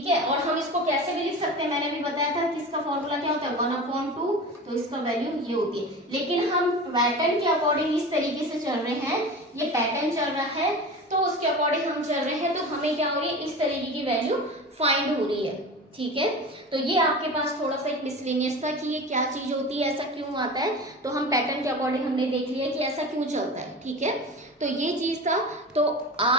है। और हम इसको कैसे भी लिख सकते हैं, मैंने भी बताया था कि इसका फॉर्मूला क्या होता है 1/2, तो इसका वैल्यू ये होती है। लेकिन हम पैटर्न के अकॉर्डिंग इस तरीके से चल रहे हैं, ये पैटर्न चल रहा है तो उसके अकॉर्डिंग हम चल रहे हैं, तो हमें क्या हो रही है, इस तरीके की वैल्यू फाइंड हो रही है, ठीक है। तो ये आपके पास थोड़ा सा एक मिसलेनियस था कि ये क्या चीज होती है, ऐसा क्यों आता है, तो हम पैटर्न के अकॉर्डिंग हमने देख लिया कि ऐसा क्यों चलता है, ठीक है। तो ये चीज था। तो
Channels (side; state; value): both; normal; correlation 0.32